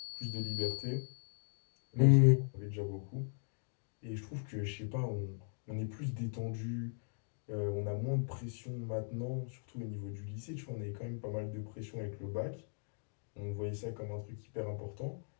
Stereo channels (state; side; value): silent; right; digital silence